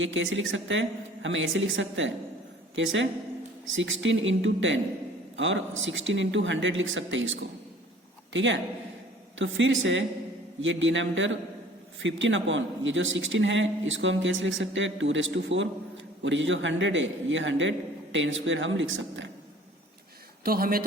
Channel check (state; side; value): normal; both; correlation 0.51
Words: कैसे लिख सकते हैं, हमें ऐसे लिख सकते हैं, कैसे 16 इंटू 10 और 16 इंटू 100 लिख सकते हैं इसको, ठीक है। तो फिर से ये डिनोमिनेटर 15 अपॉन ये जो 16 है इसको हम कैसे लिख सकते हैं 2⁴, और ये जो 100 है ये 100 10² हम लिख सकते हैं। तो हमें